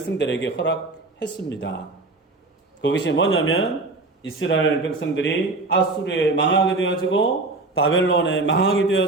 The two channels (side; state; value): left; quieter; 3.3 dB